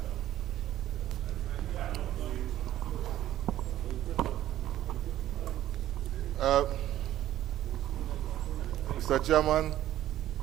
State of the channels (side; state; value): left; quieter; 13.0 dB